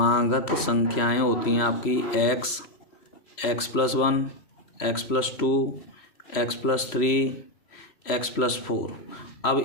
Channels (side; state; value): right; late; 3.0 ms